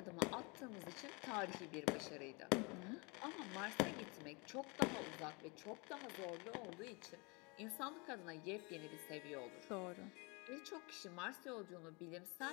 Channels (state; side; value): quieter; right; 29.7 dB